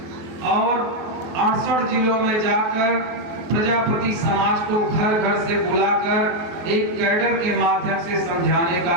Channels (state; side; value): late; left; 23 ms